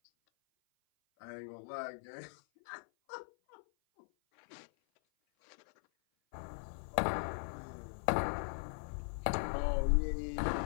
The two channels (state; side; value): silent; right; 52 dB below the other